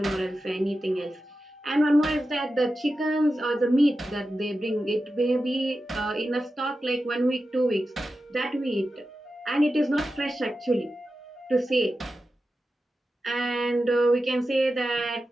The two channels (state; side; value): normal; both; correlation 0.92